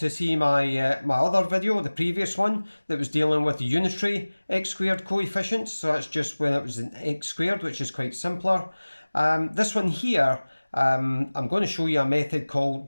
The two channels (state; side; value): inverted; both; correlation -1.00